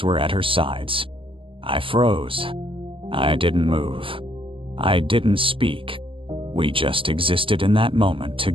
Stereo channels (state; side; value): late; left; 0.25 ms